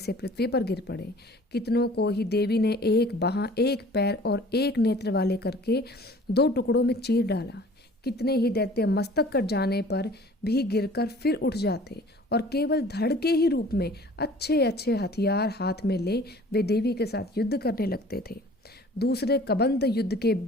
पृथ्वी पर गिर पड़े। कितनों को ही देवी ने एक बाह, एक पैर और एक नेत्र वाले करके दो टुकड़ों में चीर डाला। कितने ही दैत्य मस्तक कट जाने पर भी गिरकर फिर उठ जाते और केवल धड़ के ही रूप में अच्छे अच्छे हथियार हाथ में ले वे देवी के साथ युद्ध करने लगते थे। दूसरे कबंध युद्ध के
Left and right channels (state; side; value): normal; both; correlation 0.48